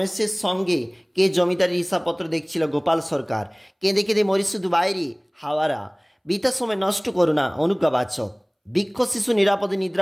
সঙ্গে কে জমিদারির হিসাবপত্র দেখছিল? গোপাল সরকার। কেঁদে কেঁদে মরি শুধু বাইরে হাওয়ারা। বৃথা সময় নষ্ট করো না অনুজ্ঞাবাচক। বৃক্ষ শিশু নিরাপদে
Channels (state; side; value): identical; both; correlation 1.00